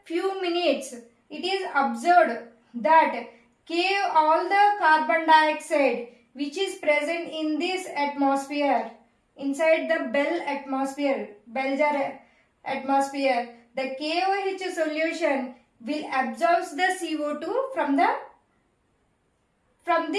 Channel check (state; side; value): identical; both; correlation 1.00